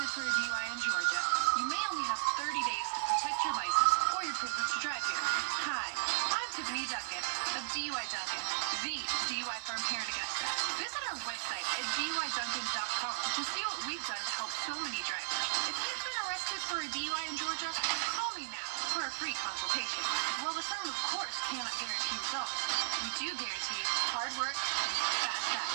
for a DUI in Georgia, you may only have 30 days to protect your license or your privilege to drive here. Hi, I'm Tiffany Duncan of DUI Duncan, the DUI firm here in Augusta. Visit our website at DUIDuncan.com to see what we've done to help so many drivers. If you've been arrested for a DUI in Georgia, call me now for a free consultation. While the firm, of course, cannot guarantee results, we do guarantee hard work and fast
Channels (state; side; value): silent; left; digital silence